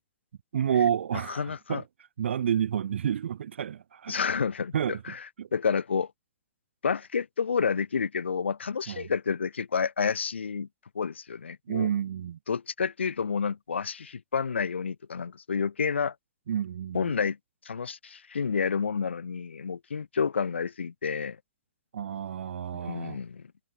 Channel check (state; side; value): inverted; both; correlation -0.62